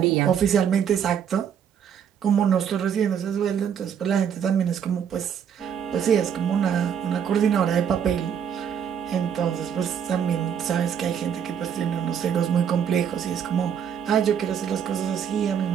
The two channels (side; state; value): left; quieter; 8.2 dB